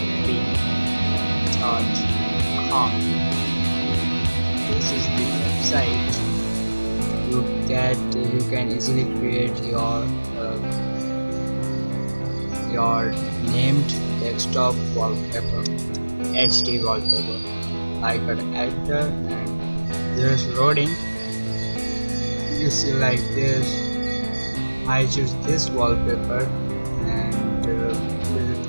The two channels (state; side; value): inverted; both; correlation -1.00